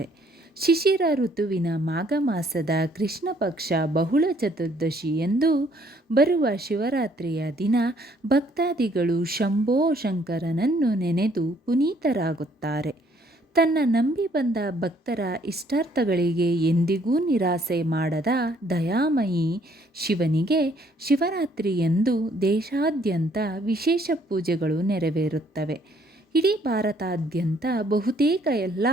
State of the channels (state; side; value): normal; both; correlation 0.64